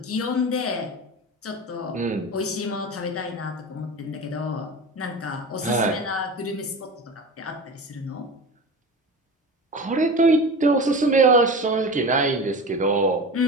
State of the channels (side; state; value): both; normal; correlation 0.31